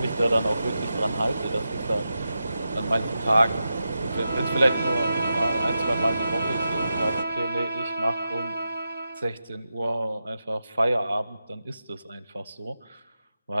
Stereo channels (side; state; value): both; inverted; correlation -0.90